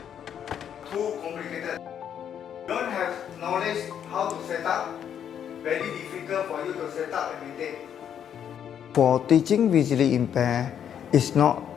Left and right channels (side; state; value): right; quieter; 8.9 dB